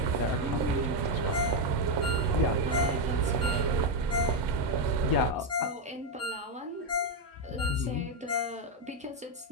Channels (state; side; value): normal; both; correlation 0.05